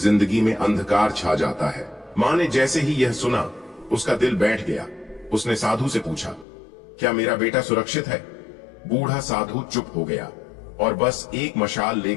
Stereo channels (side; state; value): right; drops out; at 6.5 s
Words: में अंधकार छा जाता है। मां ने जैसे ही यह सुना, उसका दिल बैठ गया। उसने साधु से पूछा, क्या मेरा बेटा सुरक्षित है? बूढ़ा साधु चुप हो गया और बस एक मशाल